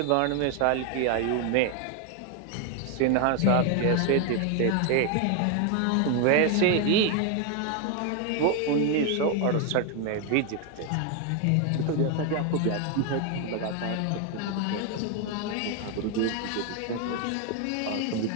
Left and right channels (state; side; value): different; both; correlation 0.01